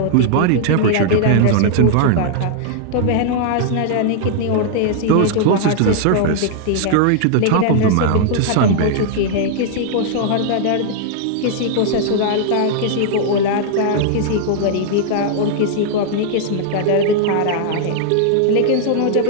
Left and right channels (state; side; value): different; both; correlation -0.01